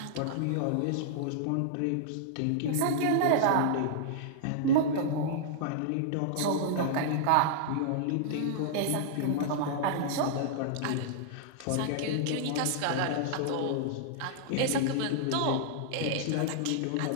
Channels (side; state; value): both; different; correlation -0.01